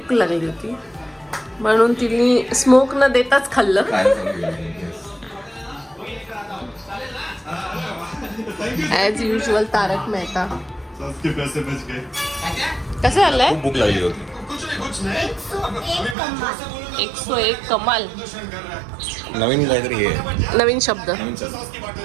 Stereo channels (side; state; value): left; drops out; at 16.2 s